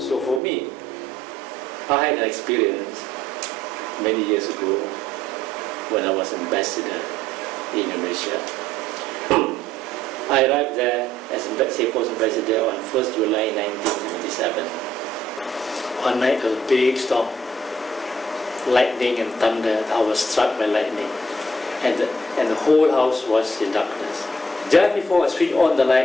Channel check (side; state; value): both; normal; correlation 0.66